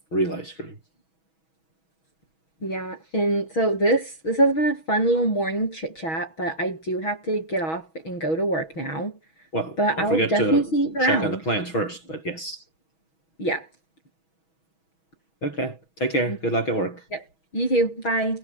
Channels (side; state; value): right; late; 6.2 ms